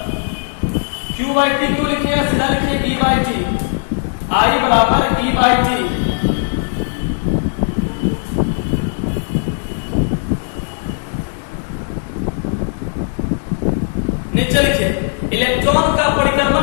Q/T, तो लिखिए, सीधा लिखिए E/T, I बराबर E/T। नीचे लिखिए इलेक्ट्रॉन का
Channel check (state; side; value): silent; right; digital silence